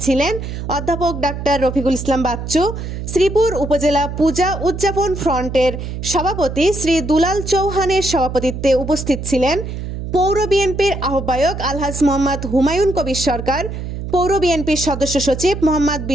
ছিলেন অধ্যাপক ডাক্তার রফিকুল ইসলাম বাচ্চু, শ্রীপুর উপজেলা পূজা উদযাপন ফ্রন্টের সভাপতি শ্রী দুলাল চৌহানের সভাপতিত্বে উপস্থিত ছিলেন পৌর বিএনপির আহ্বায়ক আলহাজ মোহাম্মদ হুমায়ুন কবির সরকার, পৌর বিএনপির সদস্য সচিব মোহাম্মদ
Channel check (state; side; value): noise; right; hum, 7 dB below the sound